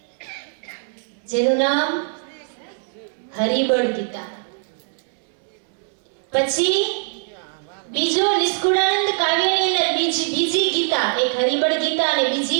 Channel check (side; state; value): left; silent; 64 dB below the other